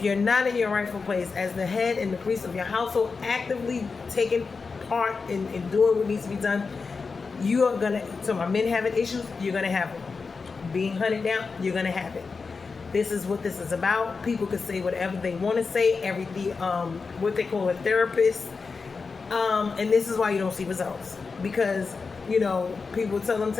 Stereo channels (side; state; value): right; quieter; 4.7 dB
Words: you're not in your rightful place as the head and the priest of your household, actively taking part in doing what needs to be done, you are gonna, so my men having issues, you're gonna have them. Being hunted down, you're gonna have it. This is what this is about. People can say whatever they want to say, everything, what they call a therapist, and this is why you don't see results. Because, people tell them